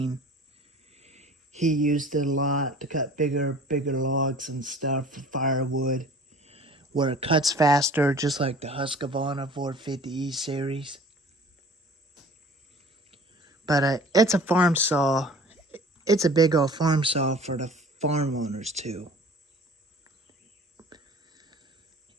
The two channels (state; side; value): normal; both; correlation 0.46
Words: He used it a lot to cut bigger logs and stuff for firewood, where it cuts faster, just like the Husqvarna 450E series. But it's a farm saw. It's a big old farm saw for the farm owners too.